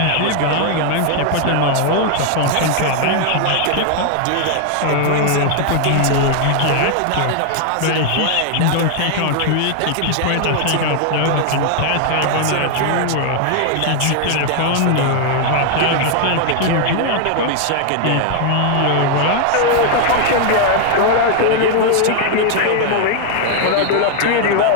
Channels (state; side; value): different; both; correlation 0.00